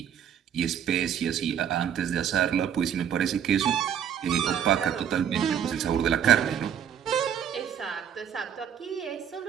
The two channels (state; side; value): quieter; left; 8.8 dB